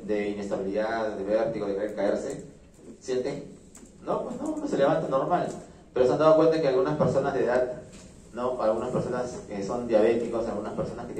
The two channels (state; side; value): identical; both; correlation 1.00